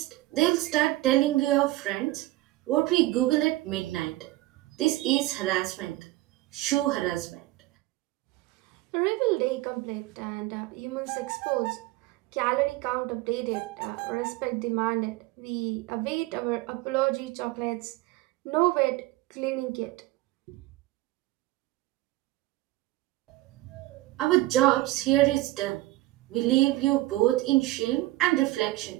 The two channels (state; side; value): quieter; left; 18.4 dB